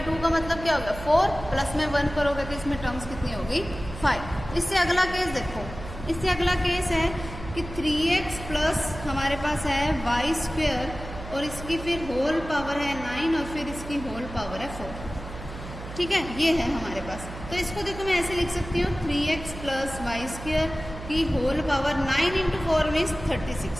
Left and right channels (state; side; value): noise; right; hum, 11 dB below the sound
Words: का मतलब क्या होगा, 4 प्लस में 1 करोगे तो इसमें टर्म्स कितनी होगी, 5। इससे अगला केस देखो, इससे अगला केस है कि 3x प्लस हमारे पास है y स्क्वेयर और इसकी फिर होल पावर है 9 और फिर इसकी होल पावर है 4। ठीक है, ये है हमारे पास। तो इसको देखो मैं ऐसे लिख सकती हूँ, 3x प्लस वाई स्क्वेयर की होल पावर 9 इंटू 4 मीन्स